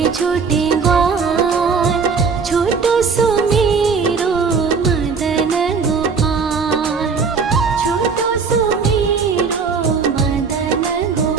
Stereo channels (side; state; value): left; quieter; 5.3 dB